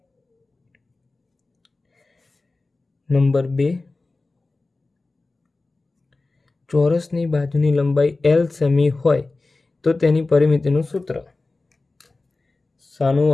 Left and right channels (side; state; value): right; quieter; 3.4 dB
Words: નંબર 2, ચોરસની બાજુની લંબાઈ L સેમી હોય તો તેની પરિમિતિનું સૂત્ર. શાનું